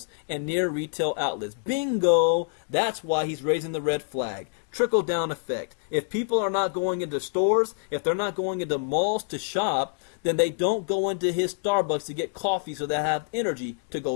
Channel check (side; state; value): right; silent; digital silence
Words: and near retail outlets. Bingo! That's why he's raising the red flag. Trickle-down effect. If people are not going into stores, if they're not going into malls to shop, then they don't go into his Starbucks to get coffee so they have energy to